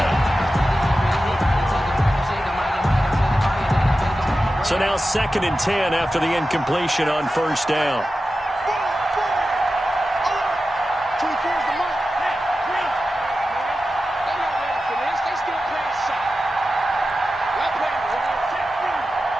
10. So now 2nd and 10 after the incompletion on 1st down.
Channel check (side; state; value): both; normal; correlation 0.93